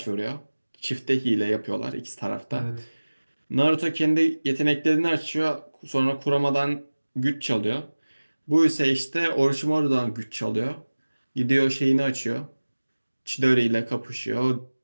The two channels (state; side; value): inverted; both; correlation -1.00